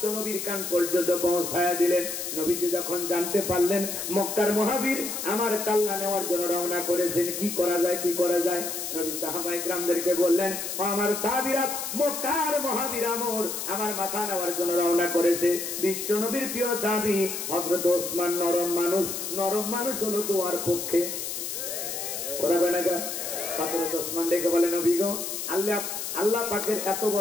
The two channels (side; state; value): left; noise; hiss, 5 dB below the sound